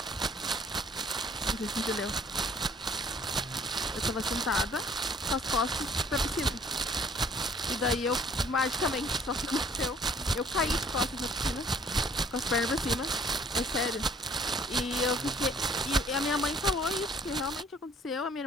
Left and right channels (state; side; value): normal; both; correlation 0.57